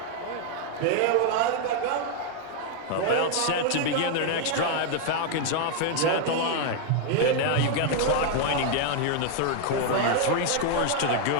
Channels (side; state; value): both; different; correlation 0.00